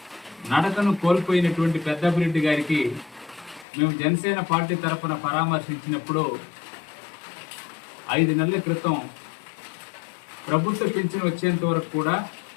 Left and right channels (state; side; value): drops out; right; at 3.7 s